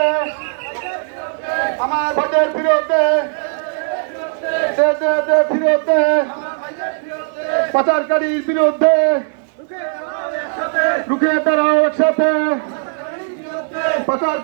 আমার ভোটের ফিরতে ফিরতে পাচারকারীর বিরুদ্ধে রুখে দাঁড়াও একসাথে।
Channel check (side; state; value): left; silent; 68 dB below the other